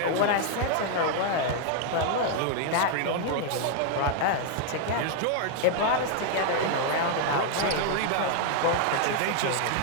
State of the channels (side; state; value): both; different; correlation 0.00